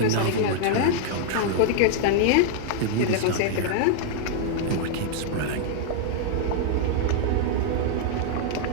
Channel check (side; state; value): both; different; correlation -0.01